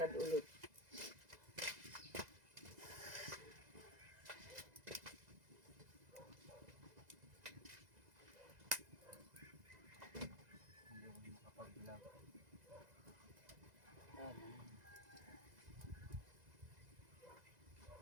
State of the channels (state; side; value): late; left; 2.0 ms